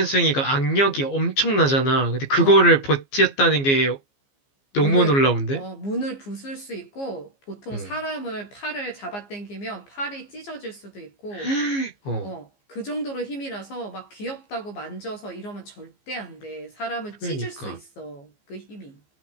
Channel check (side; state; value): right; late; 15 ms